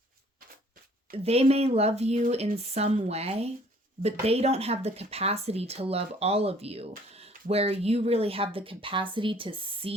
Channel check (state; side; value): normal; both; correlation 0.57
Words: they may love you in some way, but they don't have the capacity to love all of you, where you really have the capacity to